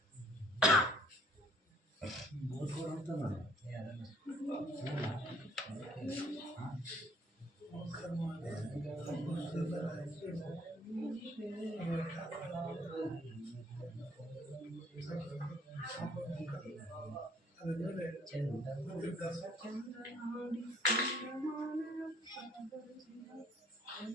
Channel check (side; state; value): both; normal; correlation 0.60